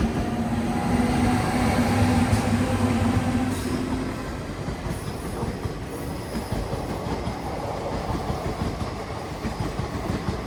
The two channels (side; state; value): both; identical; correlation 1.00